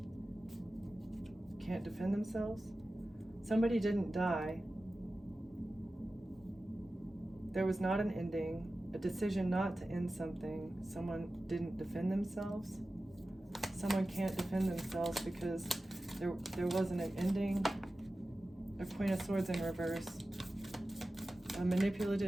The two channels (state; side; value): normal; both; correlation 0.95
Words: Can't defend themselves. Somebody didn't die. There was not an ending, a decision not to end something. Someone didn't defend themselves. Someone can't defend themselves because there wasn't an ending. A Queen of Swords in reverse. A